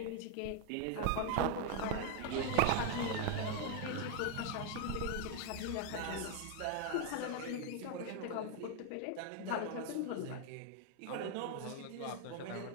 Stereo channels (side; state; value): both; different; correlation 0.00